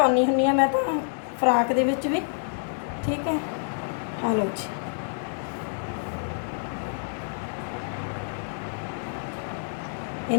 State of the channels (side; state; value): right; silent; digital silence